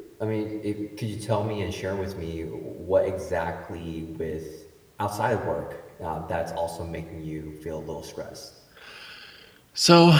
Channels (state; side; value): identical; both; correlation 1.00